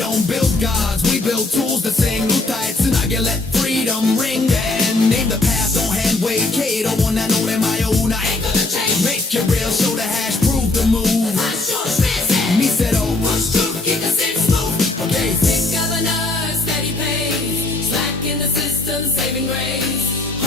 build gods, we build tools that sing. Utai tsunage, let freedom ring. And name the path, don't hand wave. Kato, one I know them my own. I ain't gonna change. Make it real, show the hash, prove the move. Me said, oh, what's truth? Keep the six move. Okay, Sick governor, steady pace. Slack in the system, saving grace.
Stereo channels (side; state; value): right; quieter; 3.1 dB